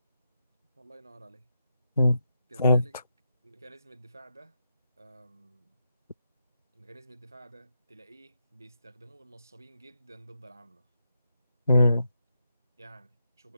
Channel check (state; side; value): inverted; both; correlation -0.84